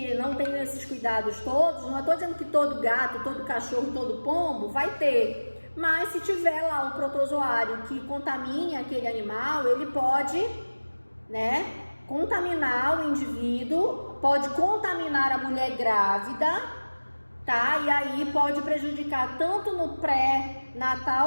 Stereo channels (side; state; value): both; inverted; correlation -1.00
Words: não tem esses cuidados todos. Não estou dizendo que todo gato, todo cachorro, todo pombo vai ter. Mas se tiver lá um protozoário que contamine aquele animal, ele pode, né, contaminar o indivíduo, pode contaminar a mulher grávida, tá? E aí pode prejudicar tanto no